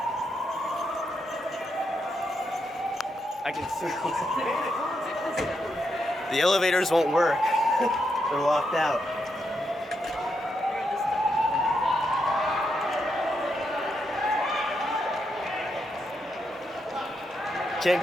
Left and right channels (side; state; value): both; normal; correlation 0.82